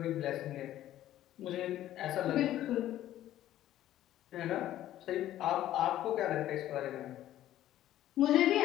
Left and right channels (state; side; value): quieter; right; 13.1 dB